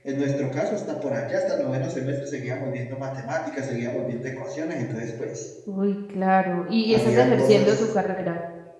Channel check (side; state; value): both; identical; correlation 1.00